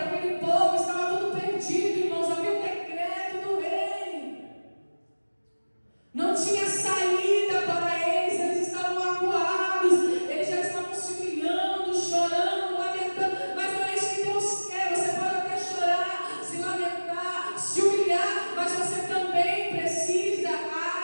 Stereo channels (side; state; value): both; inverted; correlation -1.00